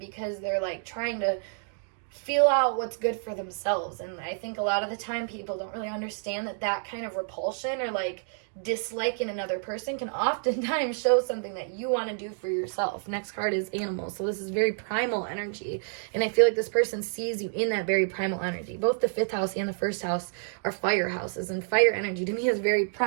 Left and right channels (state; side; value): silent; left; 59 dB below the other